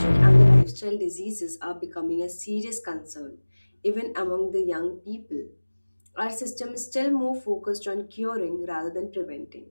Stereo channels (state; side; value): inverted; both; correlation -1.00